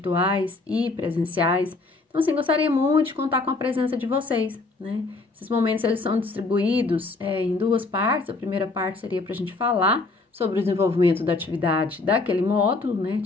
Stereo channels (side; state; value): right; quieter; 3.6 dB